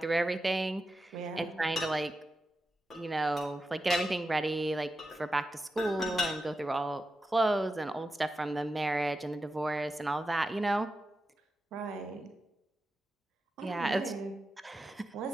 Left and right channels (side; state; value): both; normal; correlation 0.90